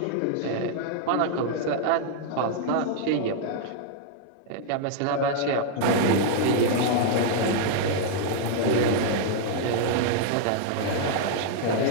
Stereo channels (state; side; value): different; both; correlation -0.01